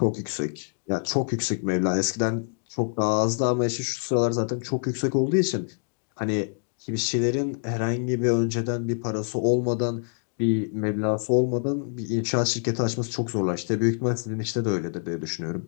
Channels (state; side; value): silent; right; digital silence